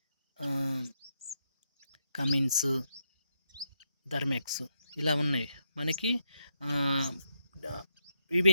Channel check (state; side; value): inverted; both; correlation -0.79